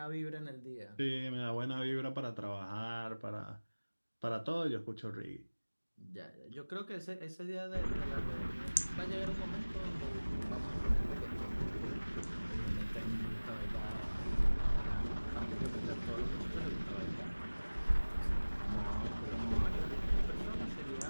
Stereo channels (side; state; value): both; inverted; correlation -1.00